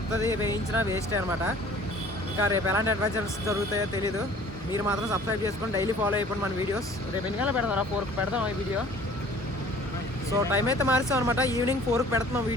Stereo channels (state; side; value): normal; both; correlation 0.51